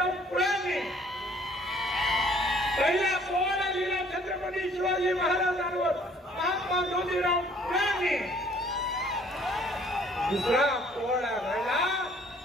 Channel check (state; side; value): normal; both; correlation 0.58